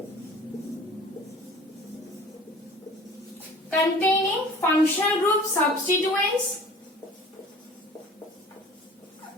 containing functional group substituents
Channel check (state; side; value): normal; both; correlation 0.46